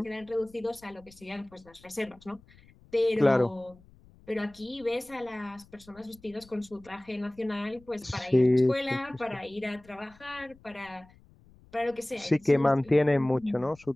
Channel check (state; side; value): noise; left; rumble, 26 dB below the sound